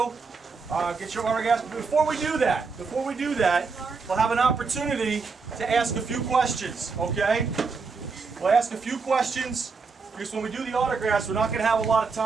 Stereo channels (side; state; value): left; quieter; 4.7 dB